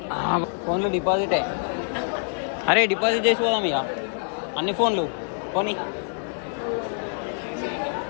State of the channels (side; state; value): right; silent; 61 dB below the other